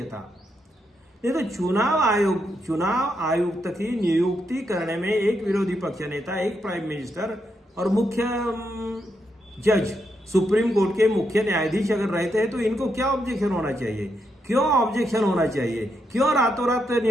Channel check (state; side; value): normal; both; correlation 0.81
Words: था। नहीं तो चुनाव आयुक्त की नियुक्ति करने में एक विरोधी पक्ष नेता, एक प्राइम मिनिस्टर और मुख्य जज, सुप्रीम कोर्ट के मुख्य न्यायाधीश अगर रहते हैं तो इनको क्या ऑब्जेक्शन होना चाहिए? क्यों ऑब्जेक्शन होना चाहिए? क्यों रातों रात